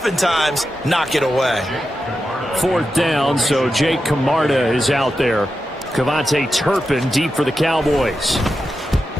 knock it away. 4th down, so Jake Camarda is out there. Cavante Turpin deep for the Cowboys.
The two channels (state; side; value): normal; both; correlation 0.89